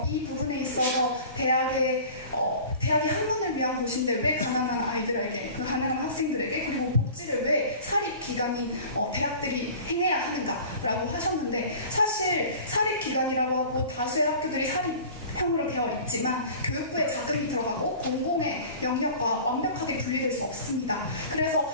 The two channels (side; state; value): both; inverted; correlation -0.41